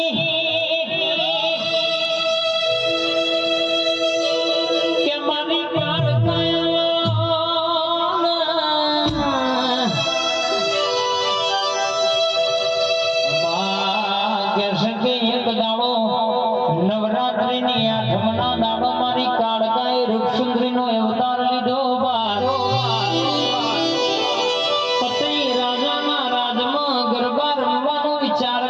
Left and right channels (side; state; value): both; identical; correlation 1.00